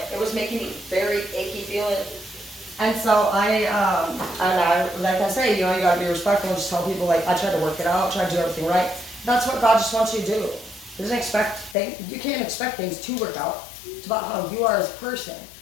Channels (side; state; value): right; drops out; at 11.8 s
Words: It was making me very achy feeling. And so like I say, you gotta be respectful and just tell people like, I tried to work it out, try to do everything right. That's what God just wants you to do. He doesn't expect things. You can't expect things to work out. It's about how you are as a person.